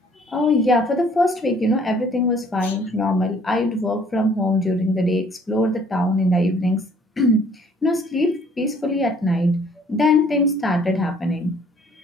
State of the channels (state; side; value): normal; both; correlation 0.59